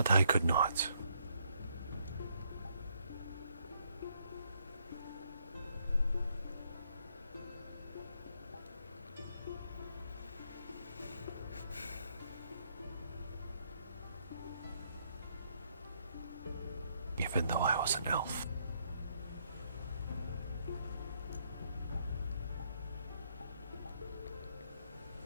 I could not. Even though I was an elf.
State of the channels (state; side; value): inverted; both; correlation -0.72